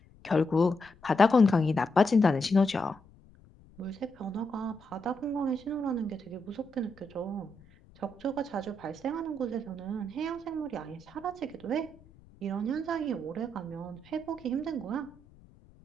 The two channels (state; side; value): noise; left; rumble, 25 dB below the sound